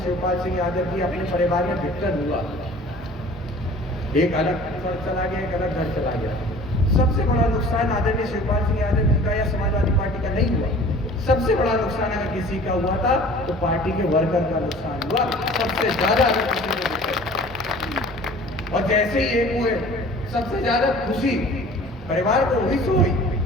शिवपाल सिंह यादव जी अपने परिवार में विघटन हुआ, एक अलग घर चला गया, एक अलग घर चला गया। सबसे बड़ा नुकसान आदरणीय शिवपाल सिंह यादव जी का या समाजवादी पार्टी का नहीं हुआ। सबसे बड़ा नुकसान अगर किसी का हुआ था तो पार्टी के वर्कर का नुकसान हुआ सबसे ज्यादा। अगर किसी को, और जैसे ही एक हुए सबसे ज्यादा खुशी परिवार को हुई सो हुई,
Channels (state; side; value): normal; both; correlation 0.46